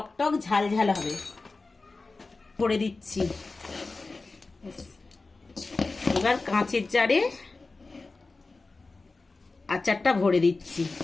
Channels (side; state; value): right; quieter; 3.6 dB